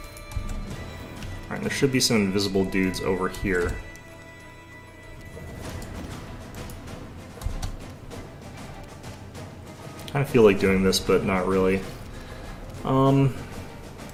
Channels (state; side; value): identical; both; correlation 1.00